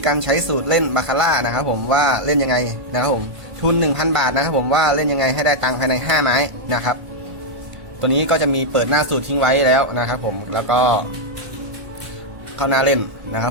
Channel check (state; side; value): late; left; 1.5 ms